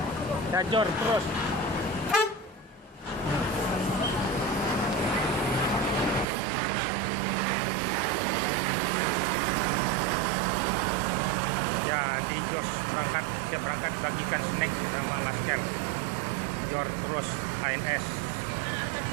Ya, jor terus. Ya, di jos berangkat, dia berangkat bagikan snack sama masker. Jor terus ANS.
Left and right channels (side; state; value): left; drops out; at 6.2 s